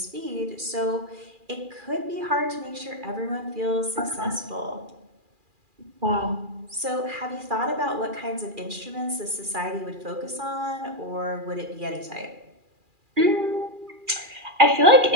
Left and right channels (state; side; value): late; left; 2.4 ms